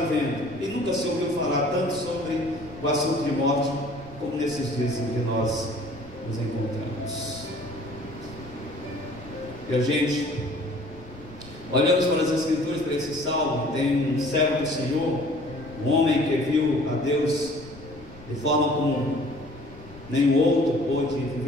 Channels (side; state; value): left; noise; rumble, 20 dB below the sound